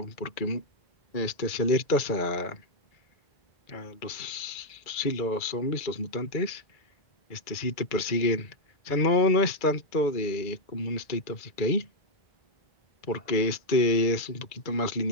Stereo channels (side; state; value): right; late; 2.3 ms